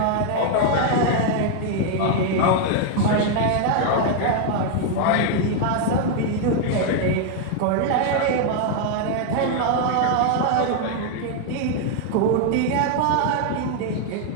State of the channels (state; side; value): different; both; correlation 0.00